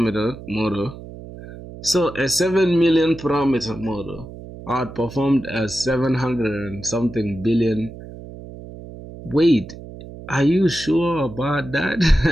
model. So a 7 million parameter model outperformed a 700 and something billion. Wait, are you sure about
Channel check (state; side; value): noise; right; hum, 14 dB below the sound